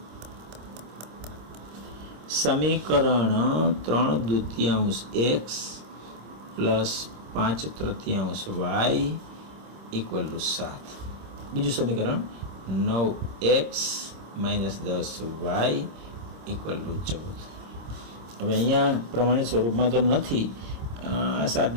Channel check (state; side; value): late; left; 26 ms